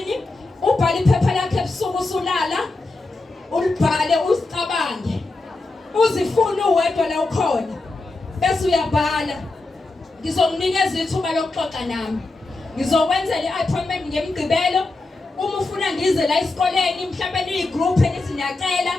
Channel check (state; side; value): quieter; right; 3.2 dB